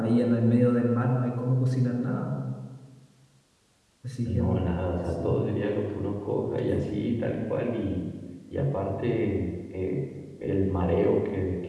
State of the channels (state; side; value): identical; both; correlation 1.00